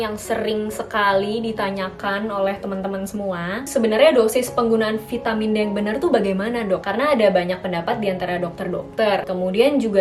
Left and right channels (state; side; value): identical; both; correlation 1.00